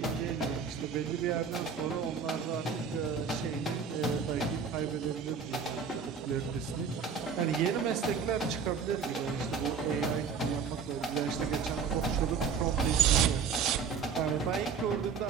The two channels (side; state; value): left; quieter; 6.1 dB